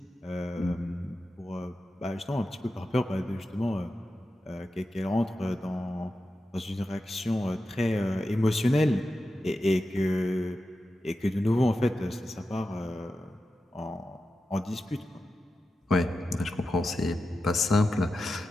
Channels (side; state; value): both; normal; correlation 0.91